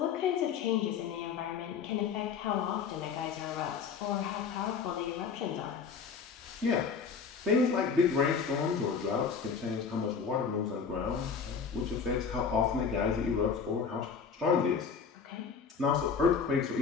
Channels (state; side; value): quieter; right; 6.0 dB